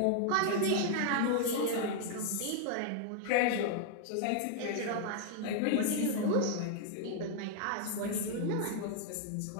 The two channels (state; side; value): different; both; correlation 0.00